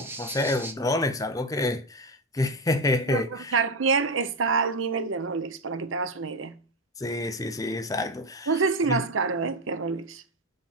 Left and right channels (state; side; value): normal; both; correlation 0.12